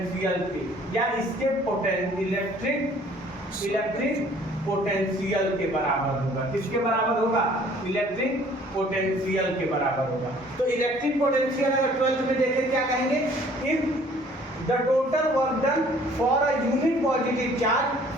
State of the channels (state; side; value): normal; both; correlation 0.56